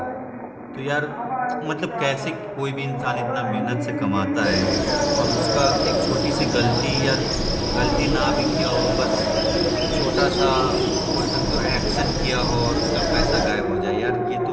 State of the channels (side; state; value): both; identical; correlation 1.00